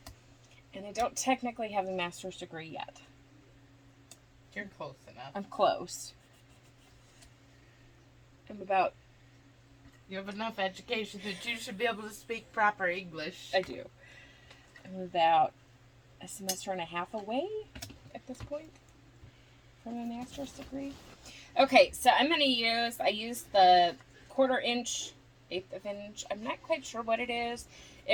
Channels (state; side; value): identical; both; correlation 1.00